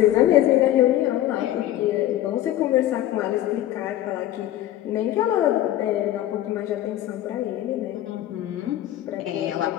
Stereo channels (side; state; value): right; quieter; 13.4 dB